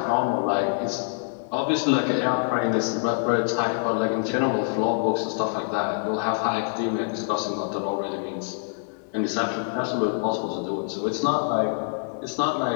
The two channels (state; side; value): silent; right; 61 dB below the other